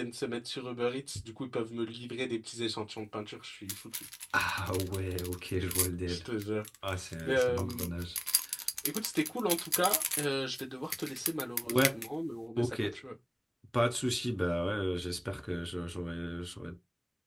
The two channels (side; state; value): both; identical; correlation 1.00